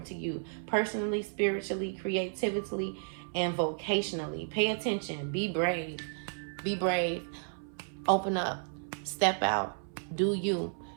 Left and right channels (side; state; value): left; silent; 56 dB below the other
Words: to you personally, spiritually, creatively, and vocationally. Pay attention. Be brave. Be brave. Open up. Step out. Do you.